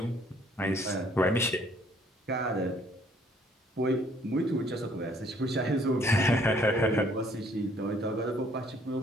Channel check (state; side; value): normal; both; correlation 0.62